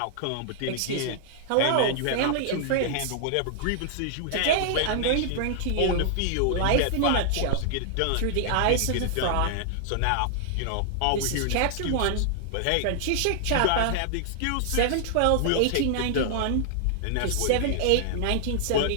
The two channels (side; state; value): both; different; correlation -0.01